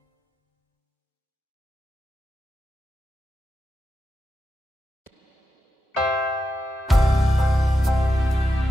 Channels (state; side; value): normal; both; correlation 0.88